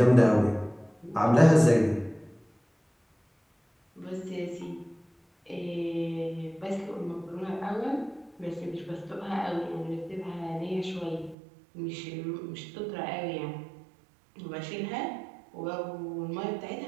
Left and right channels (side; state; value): left; drops out; at 11.4 s